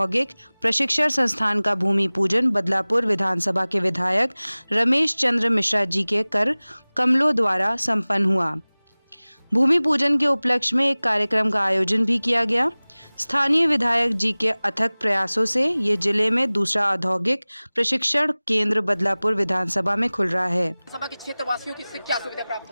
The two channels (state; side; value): inverted; both; correlation -1.00